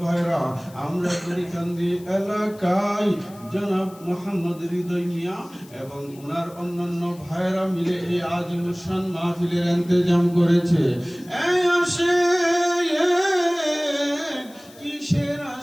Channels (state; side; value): noise; left; hiss, 24 dB below the sound